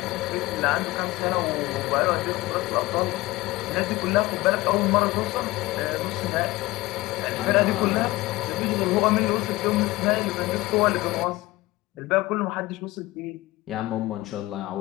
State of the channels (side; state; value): right; quieter; 19.5 dB